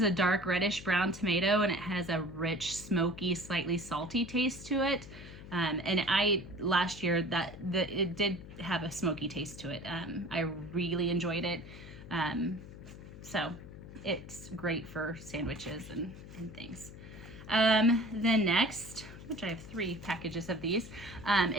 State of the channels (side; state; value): left; noise; hum, 14 dB below the sound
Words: a dark reddish brown tomato, and it has a rich, smoky, slightly salty taste to it. And last year it did have a smoky taste to it. I really enjoyed it. So it's great for sandwiches and things. Then next, which I have 3 packages of these,